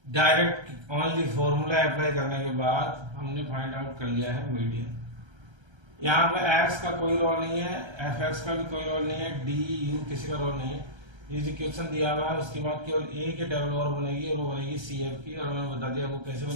direct only formula apply करने के बाद हमने फाइंड आउट कर लिया है मीडियन। यहाँ पे x का कोई रोल नहीं है, fx का भी कोई रोल नहीं है, d u किसी का रोल नहीं है। ये जो क्वेश्चन दिया हुआ है उसके बाद केवल a के टेबल और बनेगी और वो बनेगी CF की, और मैंने बता दिया वो कैसे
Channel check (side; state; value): left; late; 1.3 ms